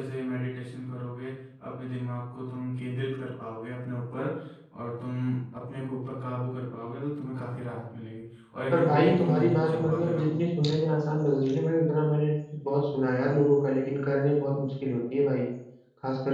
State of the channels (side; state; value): both; identical; correlation 1.00